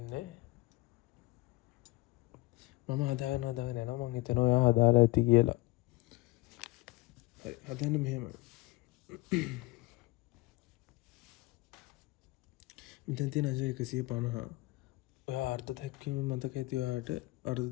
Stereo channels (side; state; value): right; quieter; 21.3 dB